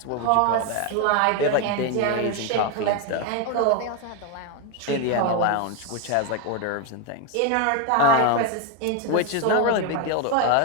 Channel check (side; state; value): both; different; correlation 0.02